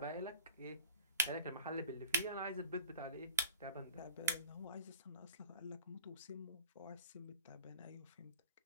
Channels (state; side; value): inverted; both; correlation -0.42